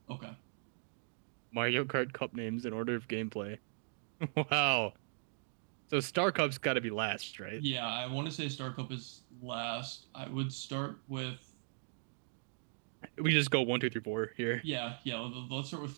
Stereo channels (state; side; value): silent; left; digital silence